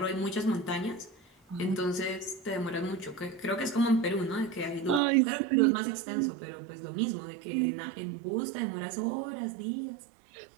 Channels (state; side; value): drops out; left; at 5.0 s